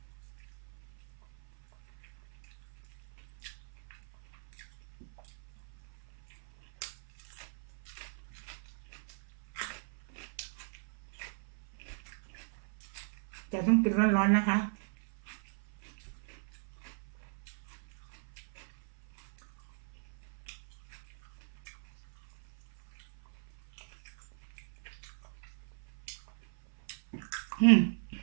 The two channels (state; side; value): silent; left; 52 dB below the other